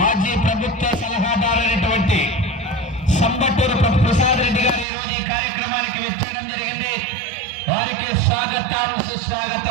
ప్రభుత్వ సలహాదారైనటువంటి సంబట్టూరు ప్రసాద్ రెడ్డి గారు ఈ రోజు ఈ కార్యక్రమానికి విచ్చేయడం జరిగింది. వారికి స్వాగతం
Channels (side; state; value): left; drops out; at 4.9 s